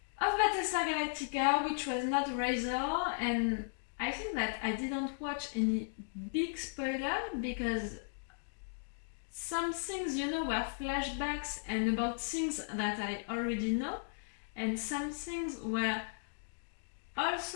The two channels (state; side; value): silent; right; digital silence